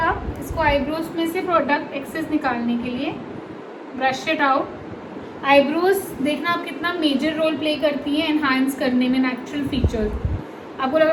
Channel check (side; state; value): both; identical; correlation 1.00